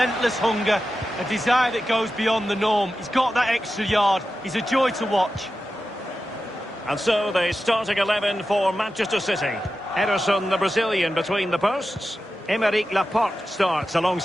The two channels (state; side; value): normal; both; correlation 0.92